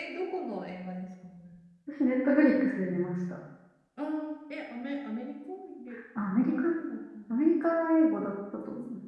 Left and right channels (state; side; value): identical; both; correlation 1.00